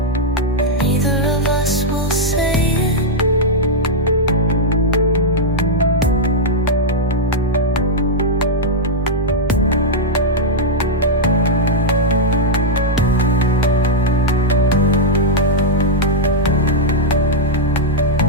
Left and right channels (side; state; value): both; normal; correlation -0.04